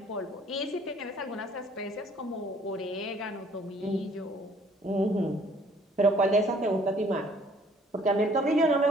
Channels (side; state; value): both; normal; correlation 0.59